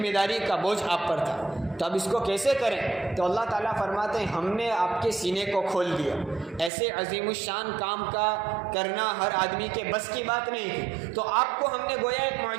داری کا بوجھ آپ پر تھا، تو اب اس کو کیسے کریں؟ تو اللہ تعالیٰ فرماتے ہیں ہم نے آپ کے سینے کو کھول دیا۔ ایسے عظیم الشان کام کا کرنا ہر آدمی کے بس کی بات نہیں تھی، تو آپ کو ہم نے گویا ایک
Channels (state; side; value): drops out; left; at 6.7 s